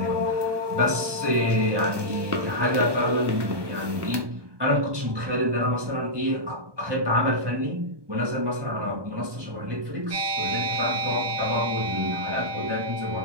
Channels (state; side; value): late; left; 1.2 ms